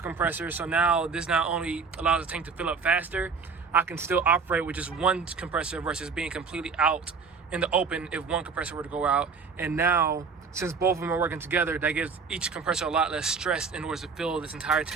So now this not only allows the tank to fill up faster, I can still operate with just one compressor versus being completely out in the open if one compressor were to go out. And now, since both of them are working together, that gives each compressor a lot less stress in order to fill this entire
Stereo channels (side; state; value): left; quieter; 5.3 dB